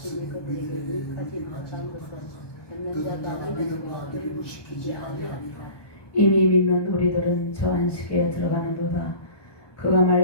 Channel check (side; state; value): right; late; 1.2 ms